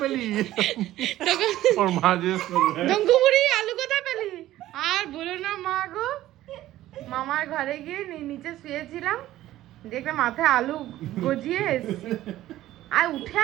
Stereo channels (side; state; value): left; quieter; 14.5 dB